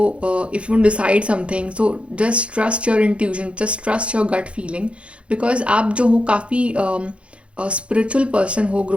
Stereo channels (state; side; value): late; left; 0.060 ms